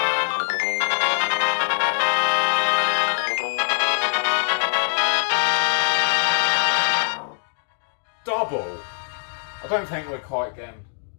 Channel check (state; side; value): silent; right; digital silence